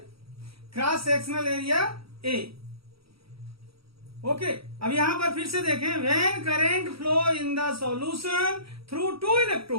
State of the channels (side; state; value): left; late; 0.76 ms